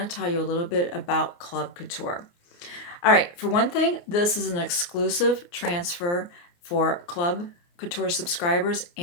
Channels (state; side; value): late; right; 29 ms